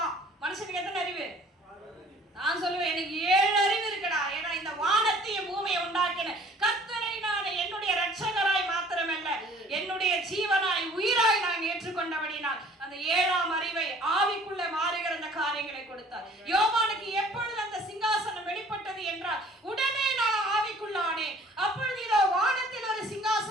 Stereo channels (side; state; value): both; normal; correlation 0.52